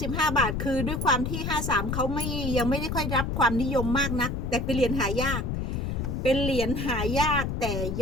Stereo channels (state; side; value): noise; left; rumble, 2 dB below the sound